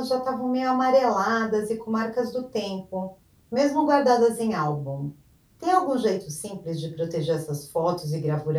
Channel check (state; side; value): identical; both; correlation 1.00